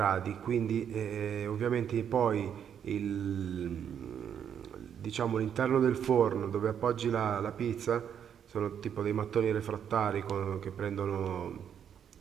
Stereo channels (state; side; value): quieter; left; 8.5 dB